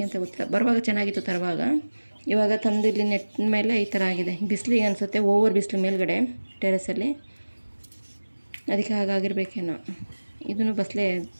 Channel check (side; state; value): both; inverted; correlation -1.00